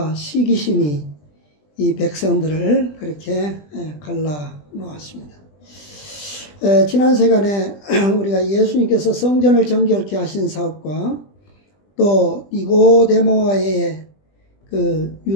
시기심이 이 백성들을 그렇게 갈라 놓았습니다. 지난 시간에 우리가 예수님께서 성전을 정결케 하신 사업과 또 니고데모와의 그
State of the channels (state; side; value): late; right; 20 ms